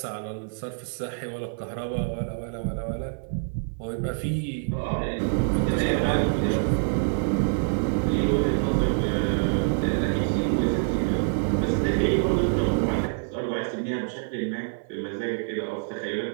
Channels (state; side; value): silent; left; 57 dB below the other